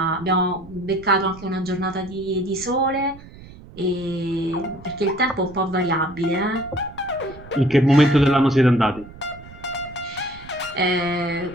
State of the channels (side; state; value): right; noise; rumble, 18 dB below the sound